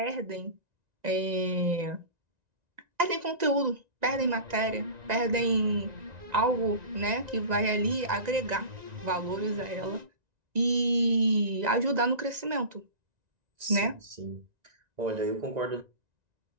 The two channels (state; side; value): late; left; 1.9 ms